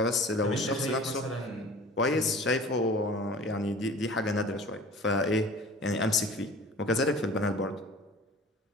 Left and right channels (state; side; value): normal; both; correlation 0.44